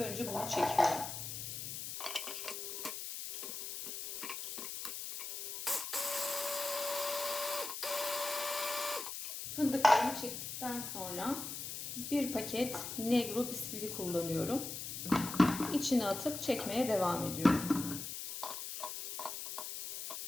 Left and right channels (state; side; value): noise; left; hiss, 6 dB below the sound